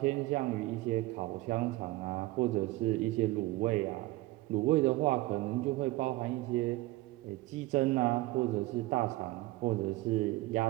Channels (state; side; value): quieter; left; 19.1 dB